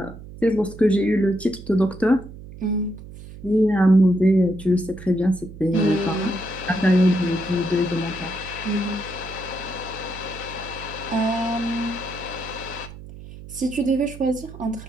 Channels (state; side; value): noise; right; hum, 15 dB below the sound